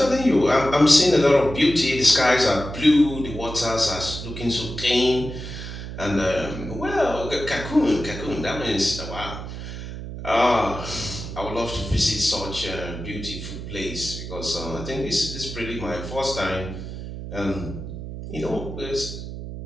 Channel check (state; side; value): noise; right; hum, 9 dB below the sound